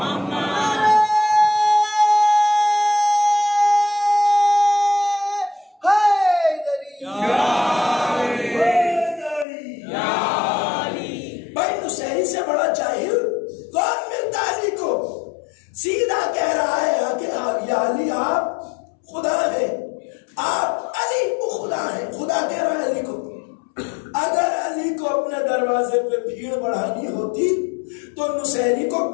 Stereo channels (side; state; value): right; drops out; at 9.5 s